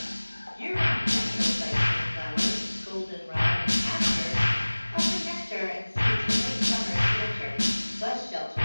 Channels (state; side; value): inverted; both; correlation -1.00